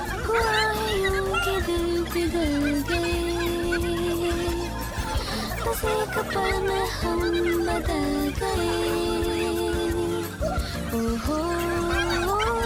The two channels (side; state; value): both; identical; correlation 1.00